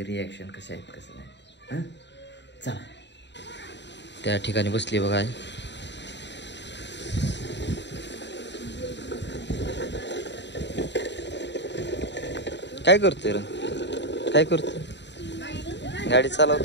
रिॲक्शन कसे आहेत कसं नाही. हां, चला. त्या ठिकाणी बसली बघा. काय करतोय रे? काय करतोय? गाडी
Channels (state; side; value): late; right; 0.51 ms